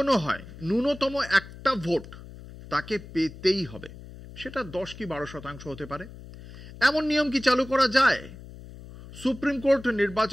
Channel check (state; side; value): noise; left; hum, 16 dB below the sound